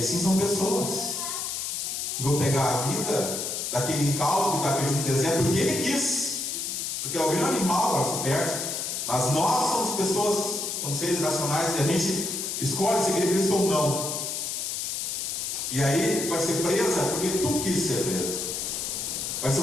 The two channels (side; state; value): left; noise; hiss, 3 dB below the sound